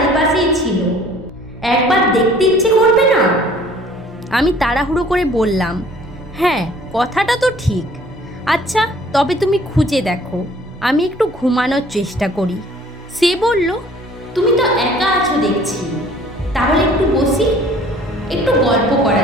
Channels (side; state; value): both; normal; correlation 0.54